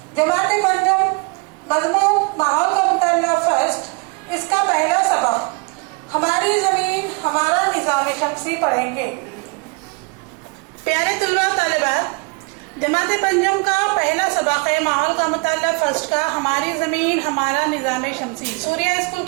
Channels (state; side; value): quieter; left; 30.8 dB